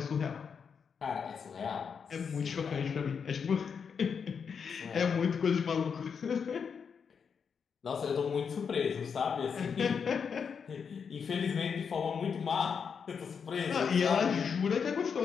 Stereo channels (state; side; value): quieter; right; 6.4 dB